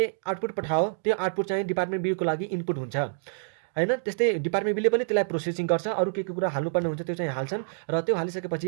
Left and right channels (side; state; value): left; silent; digital silence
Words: आउटपुट पठायो त्यो आउटपुट चाहिँ डिपार्टमेन्ट बीको लागि इनपुट हुन्छ हैन। त्यस्तै डिपार्टमेन्ट बीले पनि त्यसलाई प्रोसेसिङ गर्छ, अरू के कुरा हाल्नुपर्ने हुन्छ त्यो चाहिँ हाल्छन् र त्यो हालिसकेपछि